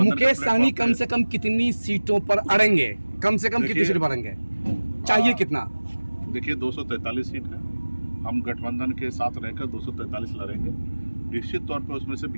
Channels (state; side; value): inverted; both; correlation -1.00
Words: मुकेश सहनी कम से कम कितनी सीटों पर अड़ेंगे? कम से कम कितनी सीट पर अड़ेंगे? चाहिए कितना? देखिए 243 सीट है, हम गठबंधन के साथ रहकर 243 लड़ेंगे। निश्चित तौर पे उसमें से